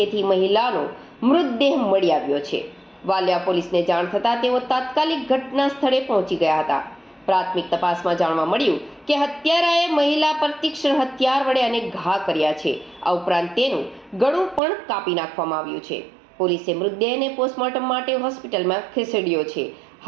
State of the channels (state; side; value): drops out; left; at 14.6 s